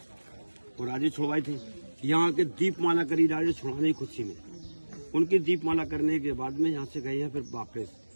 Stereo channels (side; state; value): both; inverted; correlation -1.00